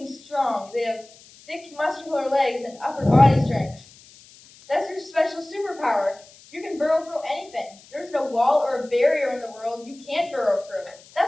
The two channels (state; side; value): noise; left; hiss, 24 dB below the sound